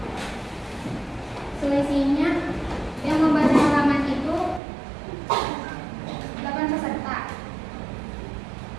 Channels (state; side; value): drops out; left; at 4.6 s